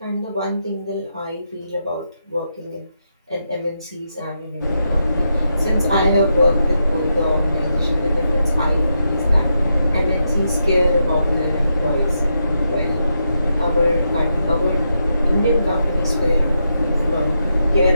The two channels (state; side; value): inverted; both; correlation -0.84